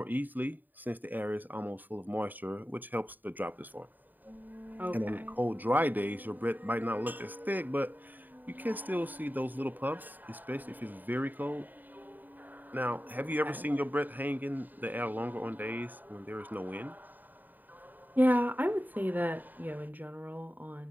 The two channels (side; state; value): left; late; 0.088 ms